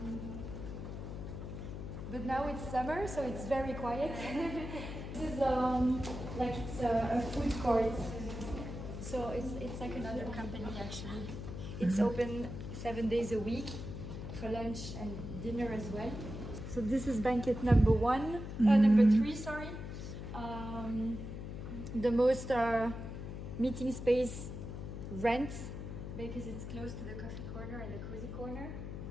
But now it's summer, so it's very quiet. This is like it's a food court. So it's like another company actually. It's open 7 days a week for lunch and dinner as well. So this is banquet number 3, sorry. The most meeting space rent because it's close to the coffee corner and the cozy corner.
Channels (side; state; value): left; noise; hum, 7 dB below the sound